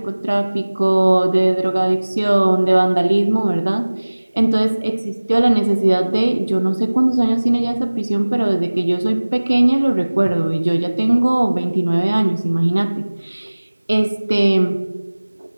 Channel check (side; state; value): both; inverted; correlation -1.00